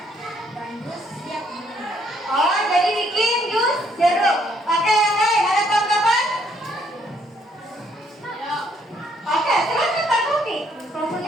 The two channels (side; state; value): both; normal; correlation 0.68